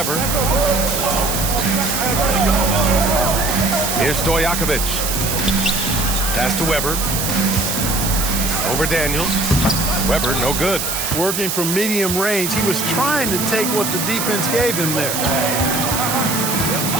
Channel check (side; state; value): right; noise; hiss, 2 dB below the sound